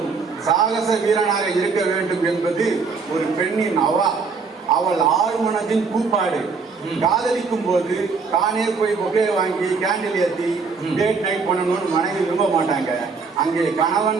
சாகச வீரனாக இருக்க வேண்டும் என்பது ஒரு பெண்ணின் அவள் ஆழ்மனதின் கூப்பாடு. காதலிக்கும் போது தானே போய் பொக்கே வாங்கி கேண்டில் ஏற்றி டேட் நைட் பண்ணணும்னு மனைவி விரும்ப மாட்டாங்க. அங்கே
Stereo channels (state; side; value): quieter; left; 4.8 dB